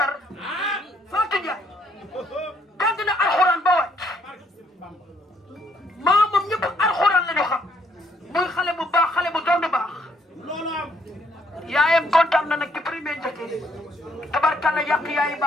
Fatou Ndiaye jàng na alxuraan ba wàcc maamam ñëpp alxuraan la ñu xam muy xale bu baax xale bu doon baax loolu am. yaayam kontaan na nag ci premier njëkkee tabarkàlla yàq yaayi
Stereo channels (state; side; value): normal; both; correlation 0.68